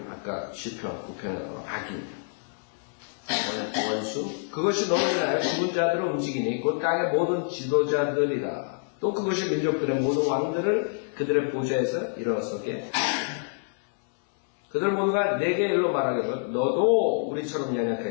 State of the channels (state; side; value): silent; right; digital silence